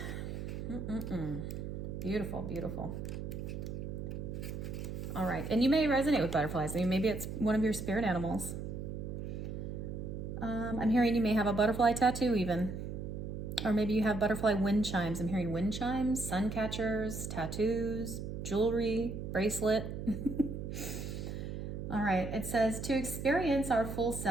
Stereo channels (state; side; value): noise; right; hum, 6 dB below the sound